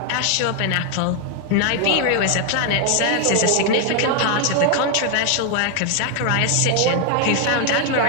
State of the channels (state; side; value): different; both; correlation 0.00